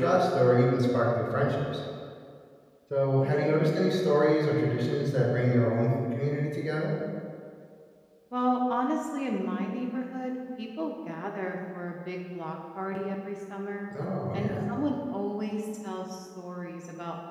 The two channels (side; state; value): both; identical; correlation 1.00